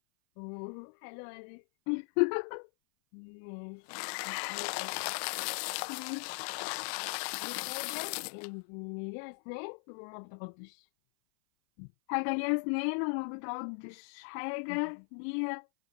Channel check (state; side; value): silent; right; 52 dB below the other